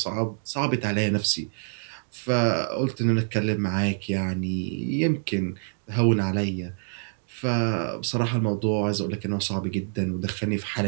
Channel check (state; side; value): silent; left; digital silence